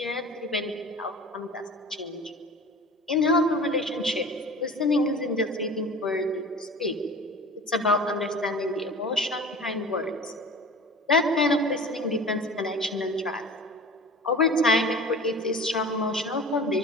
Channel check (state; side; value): normal; both; correlation 0.39